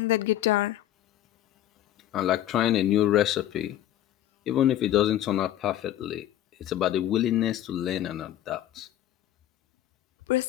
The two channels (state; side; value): quieter; right; 12.4 dB